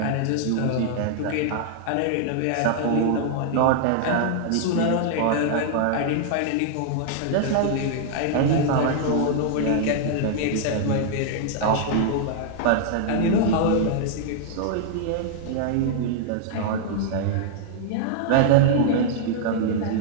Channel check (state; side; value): different; both; correlation -0.01